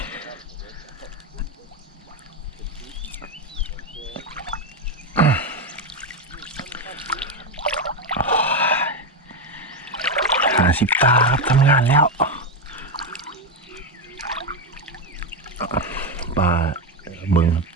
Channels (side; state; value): both; normal; correlation 0.10